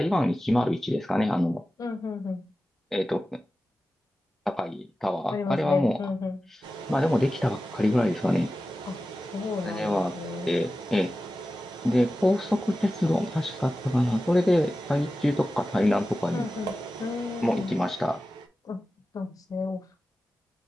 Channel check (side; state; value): both; normal; correlation 0.94